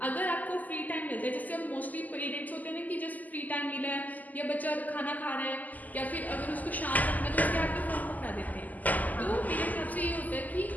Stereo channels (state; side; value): late; right; 0.080 ms